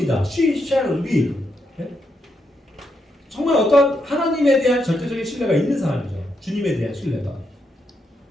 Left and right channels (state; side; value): normal; both; correlation 0.81